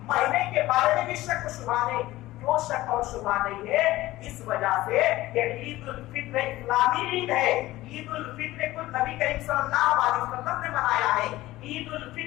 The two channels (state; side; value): quieter; right; 17.1 dB